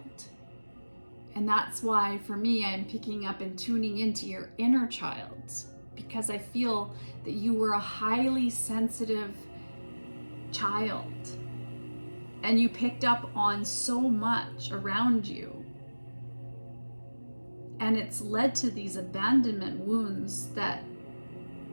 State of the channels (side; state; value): both; inverted; correlation -1.00